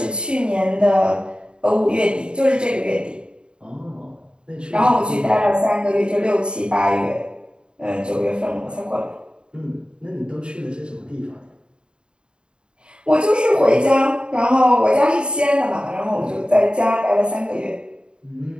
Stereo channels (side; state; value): left; late; 0.052 ms